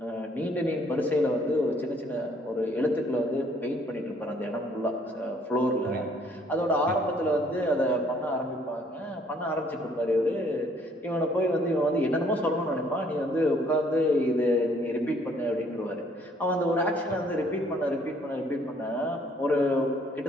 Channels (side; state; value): both; normal; correlation 0.63